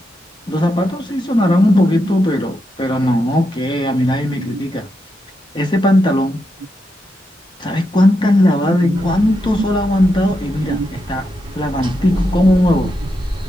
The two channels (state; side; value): normal; both; correlation 0.85